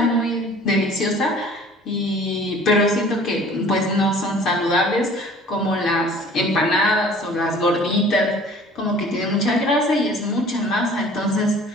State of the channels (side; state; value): both; normal; correlation 0.49